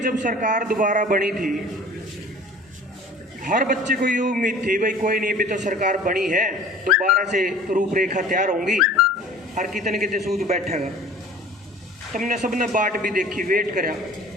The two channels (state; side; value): normal; both; correlation 0.45